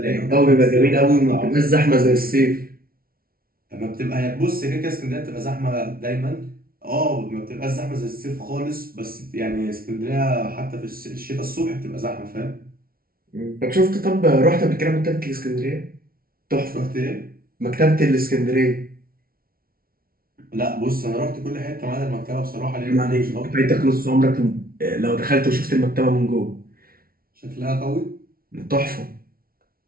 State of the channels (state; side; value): late; left; 0.43 ms